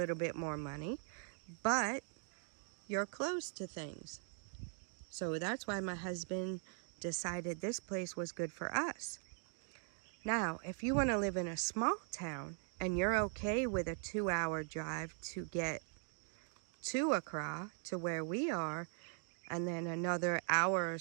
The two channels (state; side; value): silent; left; 51 dB below the other